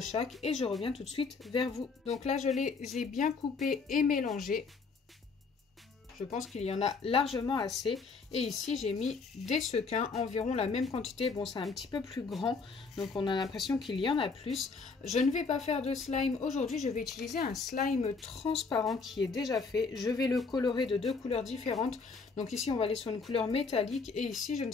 et je reviens tout de suite vers vous. Donc là je les ai bien coupés et mélangés. Je pense qu'il y en a largement assez. Et ici, j'ai mis des sequins, environ la même quantité. Bon, c'est un petit peu plus grand, donc on a l'impression qu'il y en a plus. Je ne vais pas faire de slime aujourd'hui. Je vais utiliser un slime transparent qui est déjà fait. Je vais le colorer de 2 couleurs différentes. Donc ici, on va aller sur une couleur métallique. Et ici, je ne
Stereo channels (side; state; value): right; quieter; 4.6 dB